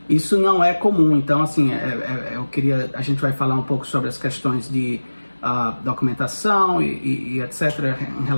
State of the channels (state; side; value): inverted; both; correlation -1.00